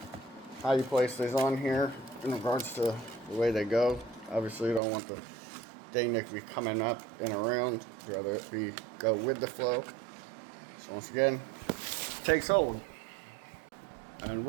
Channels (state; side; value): drops out; left; at 4.8 s